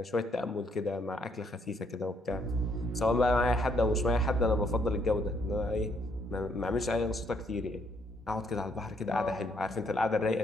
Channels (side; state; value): both; normal; correlation 0.71